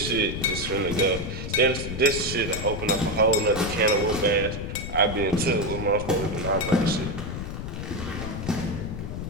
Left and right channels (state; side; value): noise; left; rumble, 6 dB below the sound